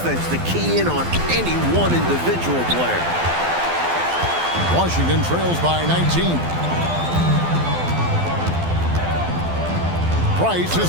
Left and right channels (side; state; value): left; late; 12 ms